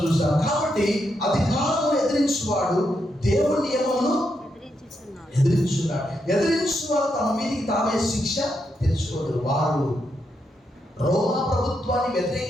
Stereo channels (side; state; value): both; normal; correlation 0.82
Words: చూస్తాం. కాబట్టి అధికారము ఎదిరించువాడు దేవుని నియమమును ఎదిరించున్నాడు. ఎదిరించువాడు తమ మీదికి తామే శిక్ష తెచ్చుకోడు. వారు రోమా ప్రభుత్వాన్ని